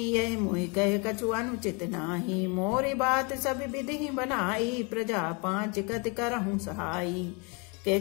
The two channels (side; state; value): right; quieter; 32.1 dB